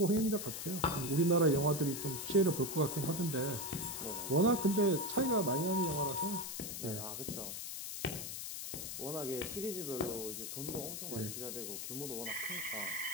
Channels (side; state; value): left; noise; hiss, 6 dB below the sound